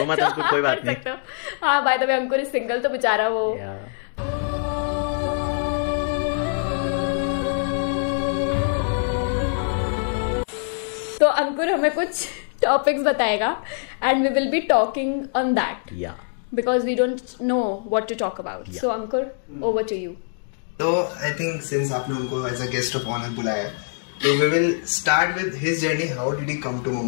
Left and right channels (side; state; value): right; silent; digital silence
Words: तो कोई बात नहीं। हाँ, by the way Ankur is single, तो बेचारा वो तो अंकुर हमें कुछ टॉपिक्स बताएगा and we will be talking on that because we don't know what to talk about. So Ankur, over to you. तो आई थिंक सिंस आपने उनको as a guest of honour बुलाया, तो we will start with his journey. How did he come to